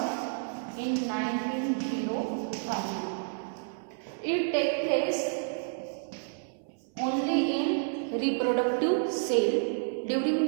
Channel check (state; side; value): silent; left; 57 dB below the other